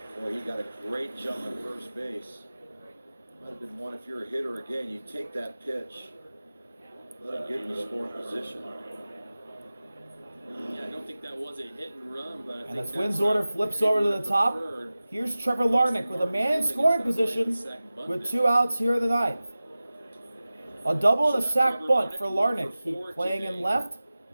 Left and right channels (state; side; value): inverted; both; correlation -0.97